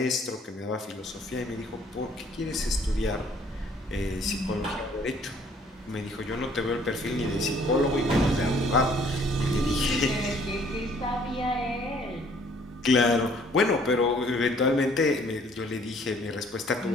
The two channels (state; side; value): normal; both; correlation 0.59